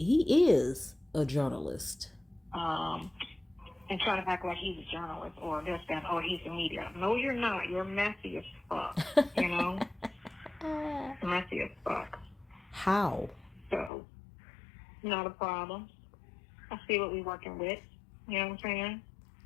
is a journalist. And trying to act like he's a journalist or this, that, or he's a media. No, you're not. You're messy as fuck, Messy as fuck. How? So, not a problem. I see what we're working with. You know what I'm saying?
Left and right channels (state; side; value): drops out; right; at 13.9 s